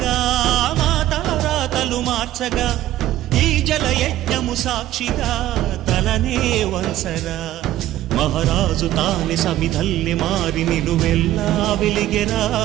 మాతారాతలు మార్చగా, ఈ జల యజ్ఞము సాక్షిగా తలనే వంచరా, మహారాజు తాని సమిధల్లి మారి నిలువెల్లా వెలిగెరా,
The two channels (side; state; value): left; quieter; 13.9 dB